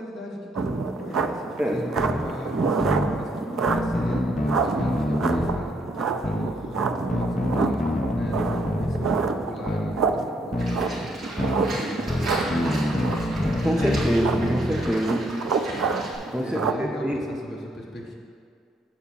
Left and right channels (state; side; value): normal; both; correlation 0.72